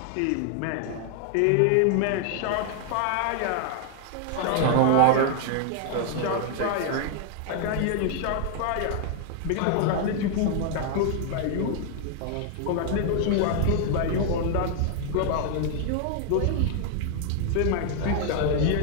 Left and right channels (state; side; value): different; both; correlation 0.00